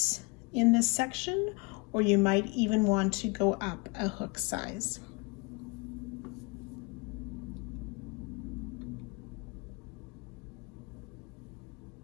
in this section, or you might even want to go up a hook size.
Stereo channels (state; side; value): quieter; right; 28.4 dB